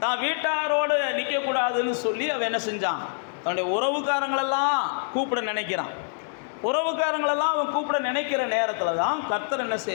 தான் வீட்டாரோடு நிற்கக்கூடாதுன்னு சொல்லி அவன் என்ன செஞ்சான்? தன்னுடைய உறவுக்காரங்களெல்லாம் கூப்பிட நினைக்கிறான். உறவுக்காரங்களெல்லாம் அவன் கூப்பிட நினைக்கிற நேரத்தில் தான் கர்த்தர் என்ன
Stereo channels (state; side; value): silent; right; digital silence